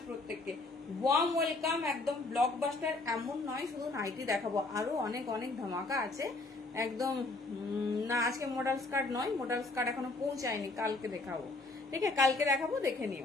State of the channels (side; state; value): right; quieter; 3.2 dB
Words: প্রত্যেককে। Warm welcome. একদম ব্লকবাস্টার এমন নয় শুধু নাইটি দেখাবো, আরো অনেক অনেক ধামাকা আছে একদম। না আজকে মডেল স্কার্ট নয়, মডেল স্কার্ট এখনো পৌঁছায়নি, কালকে দেখাবো। ঠিক আছে কালকে দেখাবো, দেখে